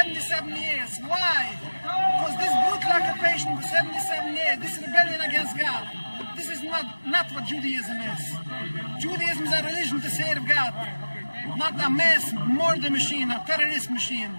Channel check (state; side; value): inverted; both; correlation -1.00